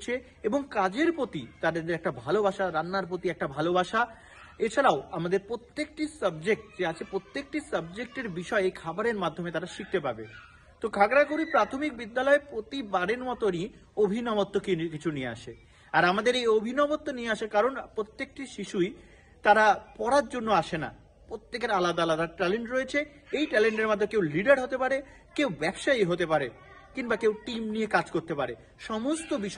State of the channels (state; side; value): identical; both; correlation 1.00